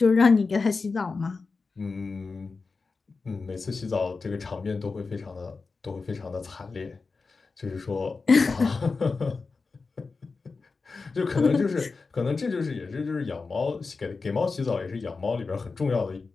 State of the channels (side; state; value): right; quieter; 4.3 dB